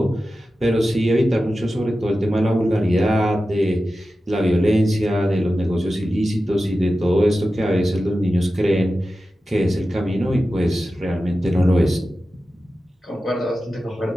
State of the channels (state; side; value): normal; both; correlation 0.93